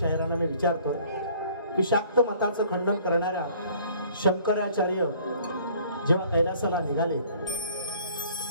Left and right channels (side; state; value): both; inverted; correlation -0.55